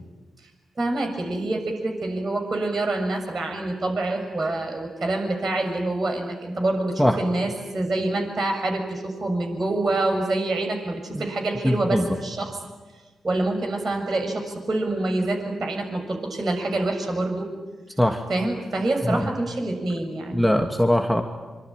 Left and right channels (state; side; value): normal; both; correlation 0.93